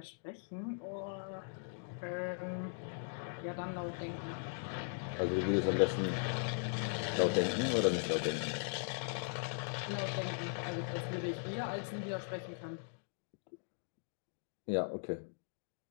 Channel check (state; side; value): silent; right; digital silence